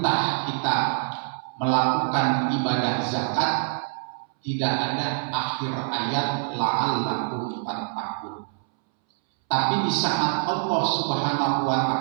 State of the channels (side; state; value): left; silent; 62 dB below the other